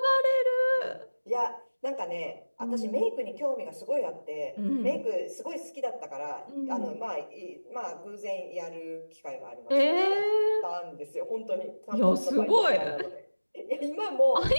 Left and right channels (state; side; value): inverted; both; correlation -1.00